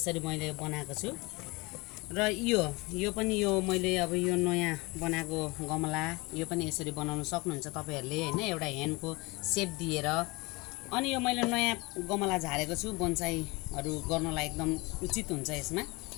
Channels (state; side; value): quieter; right; 24.6 dB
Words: मैले बनाएको छु। र यो पनि यो मैले अब यो नयाँ बनाएको गमला, यो पनि यसरी बनाउन सक्नुहुन्छ तपाईहरुले हैन, एउटा ह्यान्डको सेप दिएर। अनि यो मैले नयाँ गमला झारेको छु, बोन्साईहरु गर्नलाई एकदम उचित हुन्छ यसमा।